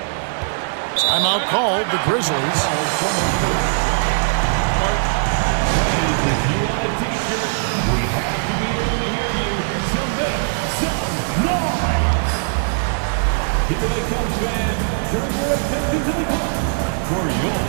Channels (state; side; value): silent; left; digital silence